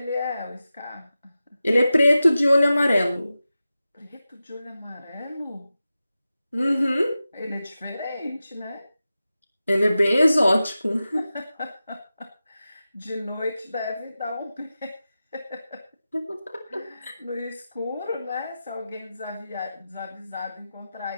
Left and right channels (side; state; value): both; inverted; correlation -0.93